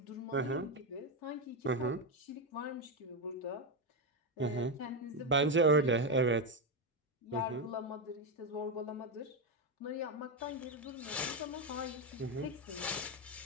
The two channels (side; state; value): both; normal; correlation 0.08